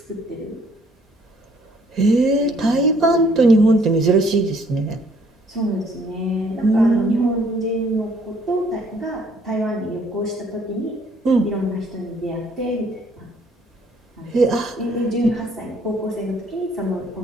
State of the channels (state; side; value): normal; both; correlation 0.63